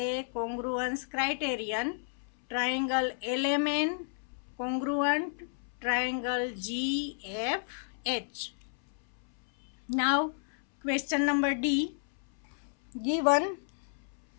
congruence criterion, triangle LMN congruent triangle GFH. Now, question number D, given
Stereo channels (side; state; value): right; silent; 56 dB below the other